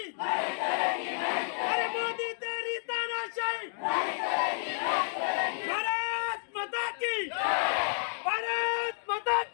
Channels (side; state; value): right; silent; digital silence